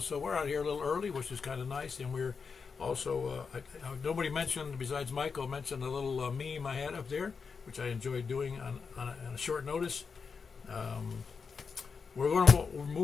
here a little early, which is kind of nice. And we're also nobody mentioned besides Michael mentioned a little meme I had up there, which I enjoyed doing on a short notice. We're going to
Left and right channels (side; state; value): right; quieter; 5.5 dB